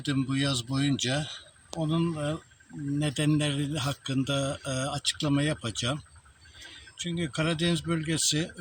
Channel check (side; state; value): both; identical; correlation 1.00